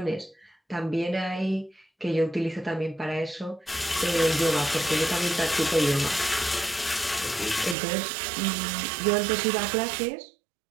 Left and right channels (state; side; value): drops out; left; at 7.8 s